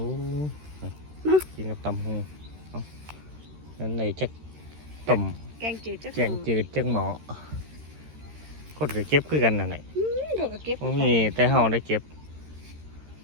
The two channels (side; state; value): left; late; 13 ms